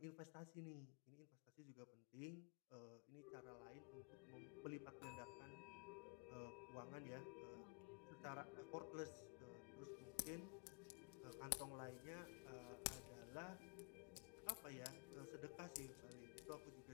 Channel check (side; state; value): right; quieter; 35.8 dB